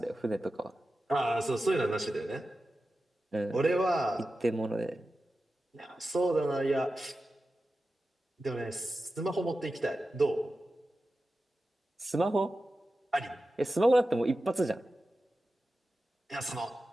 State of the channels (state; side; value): normal; both; correlation 0.93